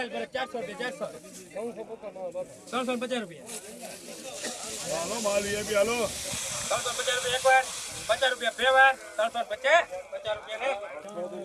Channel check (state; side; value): identical; both; correlation 1.00